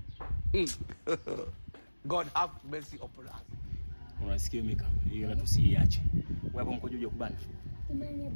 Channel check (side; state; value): both; inverted; correlation -1.00